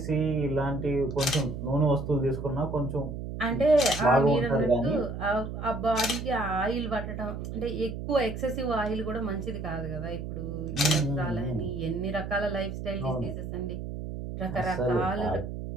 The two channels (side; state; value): right; noise; hum, 7 dB below the sound